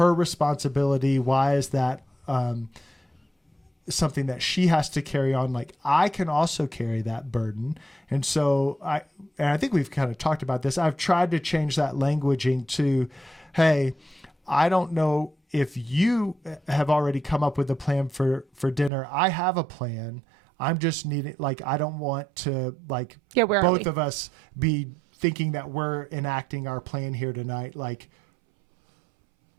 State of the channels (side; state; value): left; drops out; at 18.9 s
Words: responsibility? Why is that something that she has to carry on? Like, I can also carry that burden. And so I think we've kind of talked about this. I've tried to change that languaging to, hey, I don't know if you have already come up with a plan for dinner. I have a plan. I'm just needing, like, I don't want to, like, both of us be thinking that we're enacting our plan here tonight, like